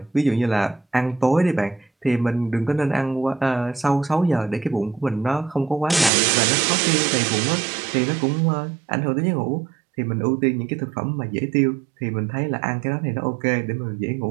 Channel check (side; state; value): left; drops out; at 6.1 s